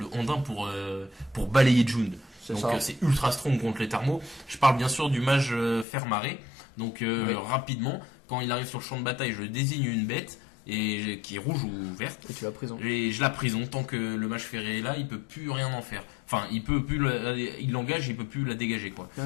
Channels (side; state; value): right; drops out; at 5.9 s